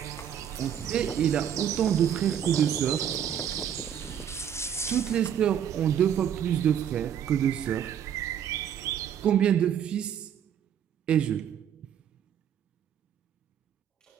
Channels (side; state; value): left; quieter; 9.2 dB